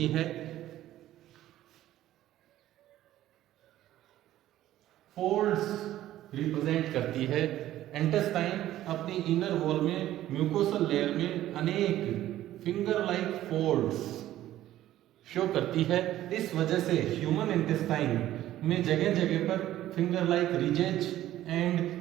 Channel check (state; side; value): quieter; left; 13.7 dB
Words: है, फोल्ड्स रिप्रेजेंट करती है। इंटेस्टाइन अपनी इनर वॉल में, म्यूकोसल लेयर में अनेक फिंगर लाइक फोल्ड्स शो करती है। इस वजह से ह्यूमन इंटेस्टाइन में जगह जगह पर finger like ridges and